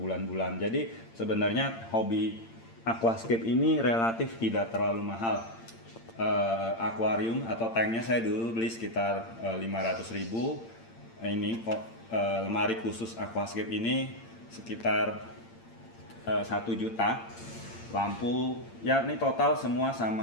Jadi sebenarnya hobi aquascape ini relatif tidak terlalu mahal. Akuarium atau tanknya saya dulu beli sekitar 500.000. Ini kok lemari khusus aquascape ini sekitar 1 juta. lampu, ya ini total semua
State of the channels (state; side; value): late; right; 8.8 ms